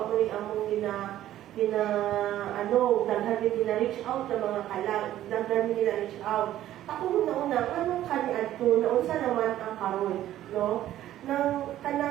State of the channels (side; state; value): left; quieter; 13.0 dB